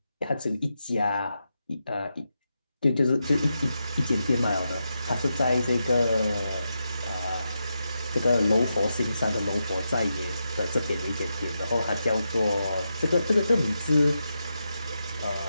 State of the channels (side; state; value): both; inverted; correlation -0.87